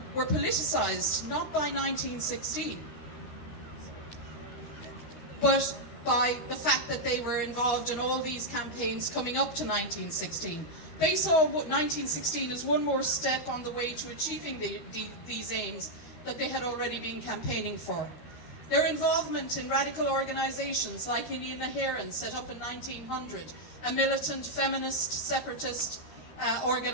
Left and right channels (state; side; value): late; right; 13 ms